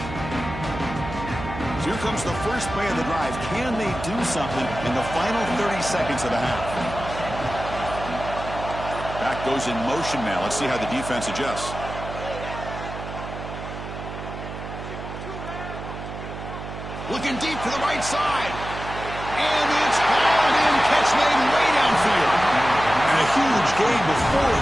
So here comes the first play of the drive. Can they do something in the final 30 seconds of the half? Back goes in motion now. Let's see how the defense adjusts. Looking deep to the right side. And it's hauled in. Catch made way downfield. And a huge gain before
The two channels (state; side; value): noise; right; hum, 9 dB below the sound